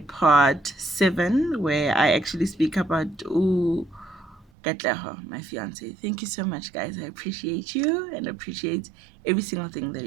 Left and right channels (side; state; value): left; drops out; at 4.5 s